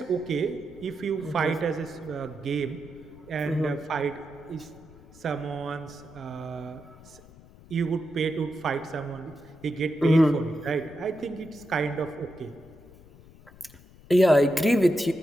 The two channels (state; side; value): noise; left; rumble, 22 dB below the sound